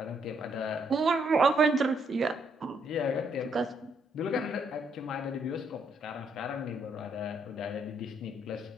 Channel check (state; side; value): normal; both; correlation 0.72